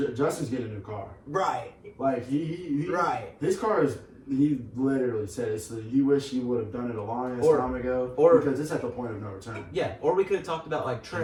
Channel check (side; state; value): both; identical; correlation 1.00